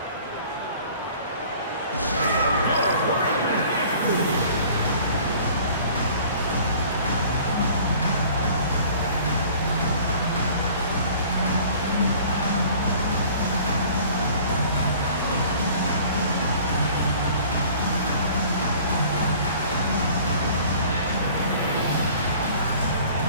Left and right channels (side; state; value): both; inverted; correlation -0.50